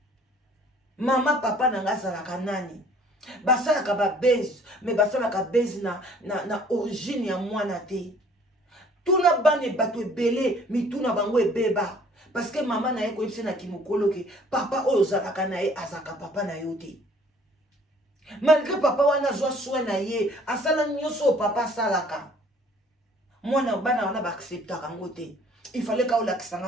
Mama papa nanga zalaka nani. Basalaka ba base, mais basalaka base na origine ya mwana te. Tuna bane bato ebele, mi tuna bango ebeba. Parce que maman na ye koyebisa na kimokolo ke papa oyo ozalaka na ye azaka papa na yo te. Malgré papa wana zwa soin na ye, asala nyonso papa salaka. Mwana bana wana ba acceptaka ngo te. Il fallait ka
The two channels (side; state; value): both; normal; correlation 0.55